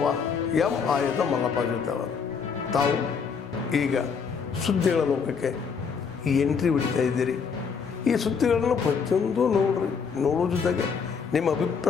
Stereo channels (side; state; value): right; quieter; 6.0 dB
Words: ಎಂ ಆಯುಧ ಮಲ್ಲಪ್ಪ ಜೊತೆವರು. ತಾವು ಈಗ ಸುದ್ದಿಗಳ ಲೋಕಕ್ಕೆ ಎಂಟ್ರಿ ಬಿಡ್ತಾ ಇದ್ದೀರಿ. ಈ ಸುದ್ದಿಗಳನ್ನು ಪ್ರತಿಯೊಂದು ನೋಡೋ ಜೊತೆಗೆ ನಿಮ್ಮ